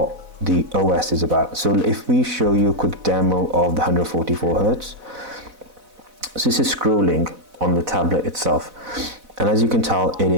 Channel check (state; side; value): late; left; 4.0 ms